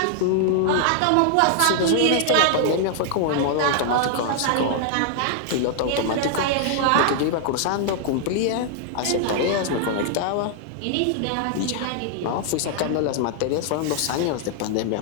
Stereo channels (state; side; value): different; both; correlation -0.01